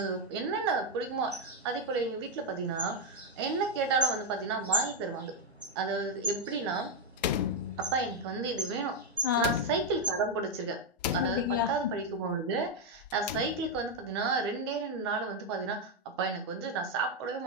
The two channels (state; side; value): normal; both; correlation 0.02